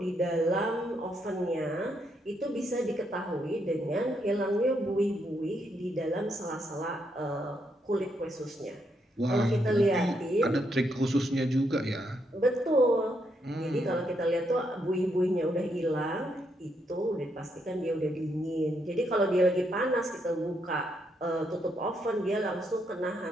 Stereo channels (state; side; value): normal; both; correlation 0.77